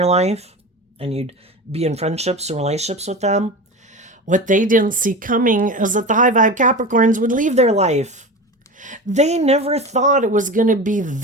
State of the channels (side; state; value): both; normal; correlation 0.29